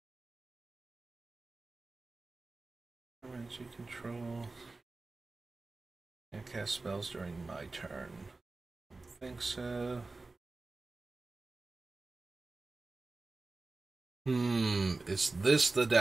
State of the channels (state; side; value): quieter; left; 3.5 dB